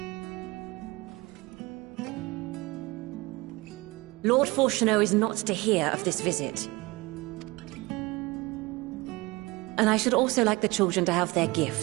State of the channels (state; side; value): quieter; left; 22.7 dB